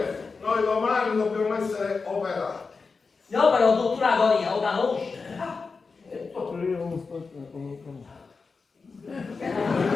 noi domani dobbiamo essere operati. No, però tutta l'agonia, lo conosci?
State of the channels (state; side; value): quieter; right; 4.6 dB